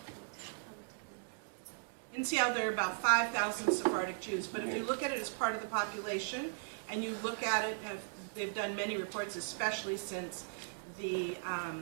there are about 5,000 Sephardic Jews. But if you look at it as part of the population, and you look at it, they've done many reports, especially since the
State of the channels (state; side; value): silent; left; digital silence